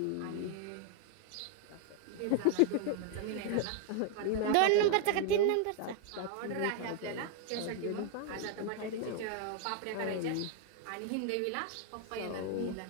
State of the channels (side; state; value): both; different; correlation 0.00